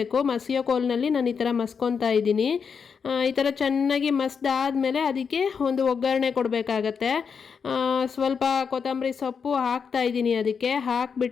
ಮಸಿಯೋ ಕೋಲ್ನಲ್ಲಿ ನಾನು ಈ ಥರ ಮಸ್ಕೊತಾ ಇದ್ದೀನಿ. ಈ ಥರ ಚೆನ್ನಾಗಿ ಮಸ್ದಾದ್ಮೇಲೆ ಅದಕ್ಕೆ ಒಂದು ಒಗ್ಗರಣೆ ಕೊಡಬೇಕಾಗತ್ತೆ. ಸ್ವಲ್ಪ ಕೊತ್ತಂಬರಿ ಸೊಪ್ಪು ಹಾಕ್ತಾ ಇದ್ದೀನಿ. ಅದಕ್ಕೆ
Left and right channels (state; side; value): quieter; right; 6.2 dB